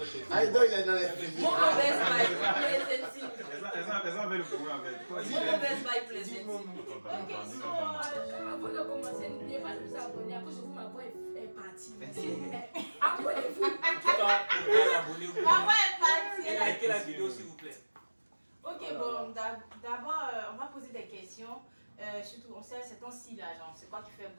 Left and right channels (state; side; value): inverted; both; correlation -1.00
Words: tu es- Ah, donc il est dans les films. Mon mauvaise vibe, pleasant. Elles ont le problème en fait. Mon mauvaise vibe, pleasant. Ok, so, Avant de commencer, n'oubliez pas de vous abonner à cause de vous, ma voix est partie. Abonnez-vous. Pourquoi l'abonner ma voix est partie. Et likez la vidéo, s'il vous plaît. Ok, bon, d'abord, on va poser des questions. Surtout, on sait, c'est temps-ci là, genre, c'est quoi qui fait